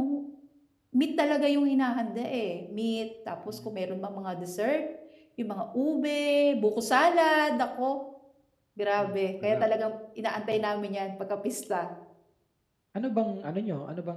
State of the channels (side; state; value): both; identical; correlation 1.00